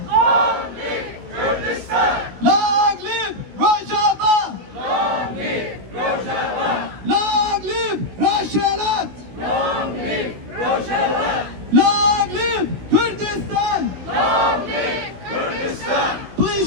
Long live Kurdistan! Long live Rojava! Long live Rojava! Long live Rojhilat! Long live Rojava! Long live Kurdistan! Long live Kurdistan!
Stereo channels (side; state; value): left; late; 16 ms